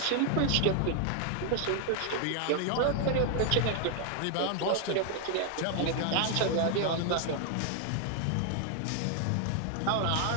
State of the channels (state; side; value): different; both; correlation 0.00